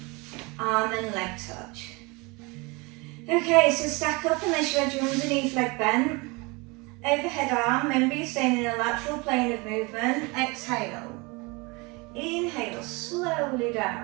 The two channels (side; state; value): left; quieter; 26.8 dB